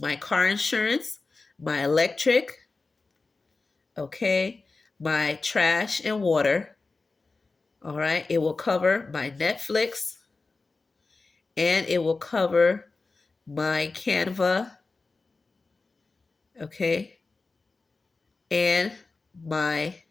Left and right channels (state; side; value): quieter; right; 3.8 dB